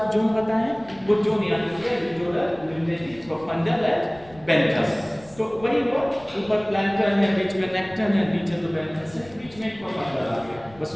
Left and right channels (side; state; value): left; noise; rumble, 24 dB below the sound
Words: जोन बताए हैं. वो जोन याद रखिए, लिटोरल, लिग्नेटिक, प्रोफंडल एंड बेंथस. तो वही हुआ, ऊपर प्लैंक्टन है, बीच में नेक्टन है, नीचे तो बेंथस है, बीच में प्रोफंडल आ गया. बस